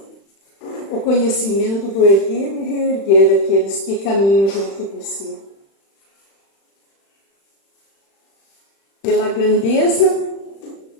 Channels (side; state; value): right; late; 36 ms